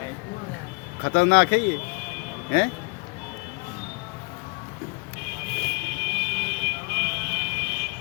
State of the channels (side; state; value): right; quieter; 30.3 dB